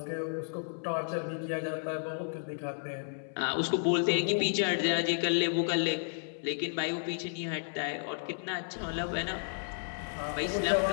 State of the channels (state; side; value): silent; right; 56 dB below the other